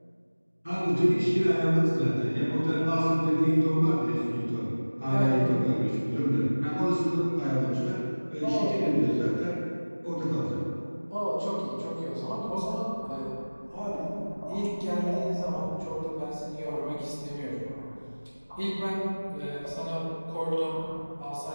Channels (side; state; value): both; inverted; correlation -1.00